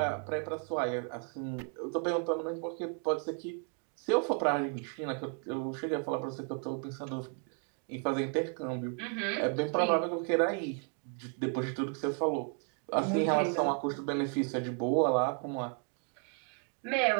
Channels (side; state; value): left; quieter; 39.8 dB